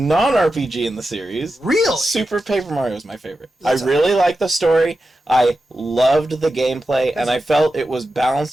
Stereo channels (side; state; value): both; normal; correlation 0.91